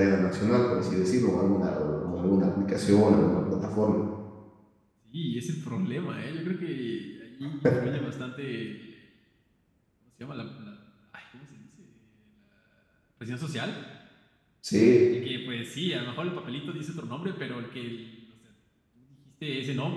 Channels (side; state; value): both; identical; correlation 1.00